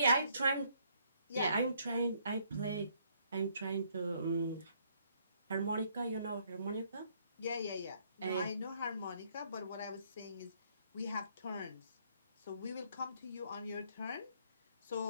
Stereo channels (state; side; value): inverted; both; correlation -0.67